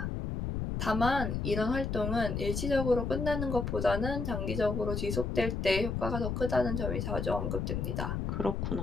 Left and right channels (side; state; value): left; noise; rumble, 2 dB below the sound